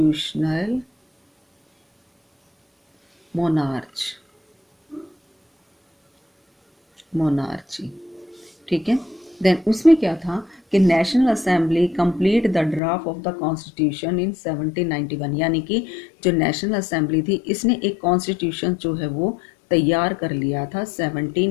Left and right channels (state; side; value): drops out; right; at 12.8 s